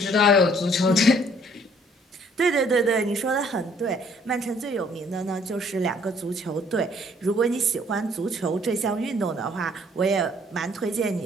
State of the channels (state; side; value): normal; both; correlation 0.61